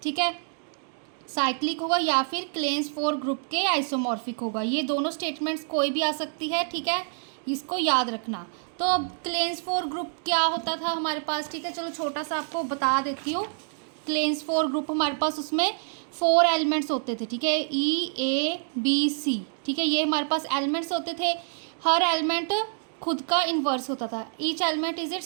ठीक है, साइक्लिक होगा या फिर क्लेन्स 4 ग्रुप के आइसोमॉर्फिक होगा। ये दोनों स्टेटमेंट्स कोई भी आ सकती है, ठीक है, इसको याद रखना। तो अब क्लेन्स 4 ग्रुप क्या होता था हमारे पास, ठीक है, चलो छोटा सा आपको बता देती हूँ। क्लेन्स 4 ग्रुप हमारे पास उसमें 4 एलिमेंट्स होते थे, ठीक है, E A B C, ठीक है, ये हमारे पास एलिमेंट्स होते थे। हर एलिमेंट खुद का इन्वर्स होता था, each element is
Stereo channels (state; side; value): silent; left; digital silence